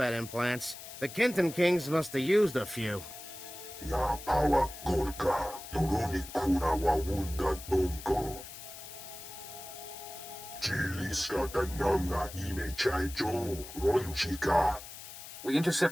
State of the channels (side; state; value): left; noise; hiss, 13 dB below the sound